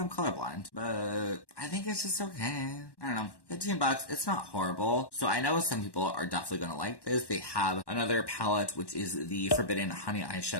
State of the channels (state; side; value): late; right; 1.1 ms